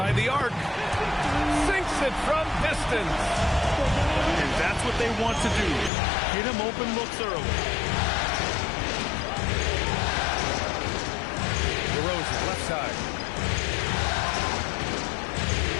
the arc. Sinks it from distance. And that's what they want to do. Get him open looks early. DeRozan, left side.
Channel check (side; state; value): right; drops out; at 5.9 s